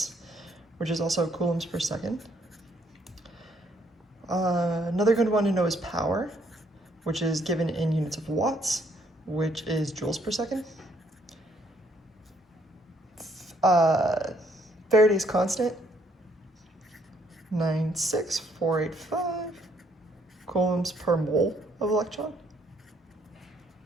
which is also coulombs per second. Another good one to know is power, which is given in units of watts, which is joules per second. Faraday's constant, 96485 coulombs per mole of electron.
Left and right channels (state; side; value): normal; both; correlation 0.68